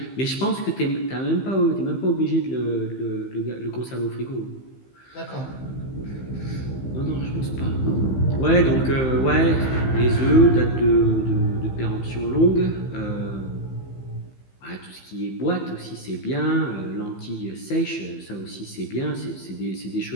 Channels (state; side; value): late; right; 15 ms